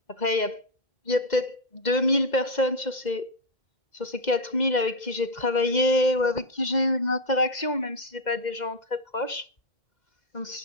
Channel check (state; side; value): late; right; 2.0 ms